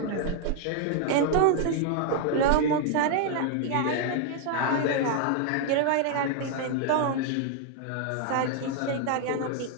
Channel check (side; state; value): both; different; correlation 0.00